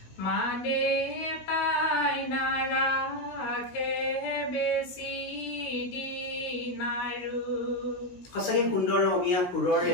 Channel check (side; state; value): right; late; 16 ms